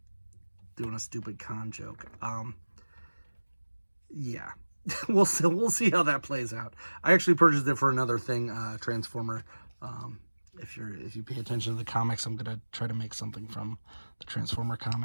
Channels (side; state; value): both; inverted; correlation -1.00